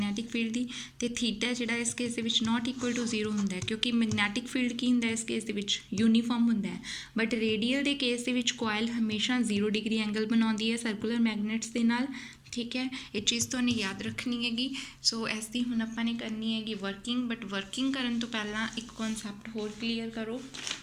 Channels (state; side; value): identical; both; correlation 1.00